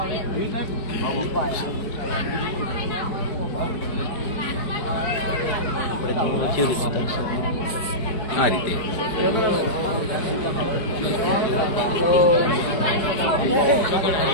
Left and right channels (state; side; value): late; right; 4.6 ms